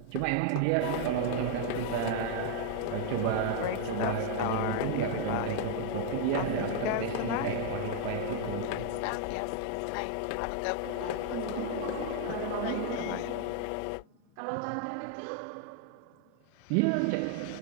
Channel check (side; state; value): both; different; correlation 0.00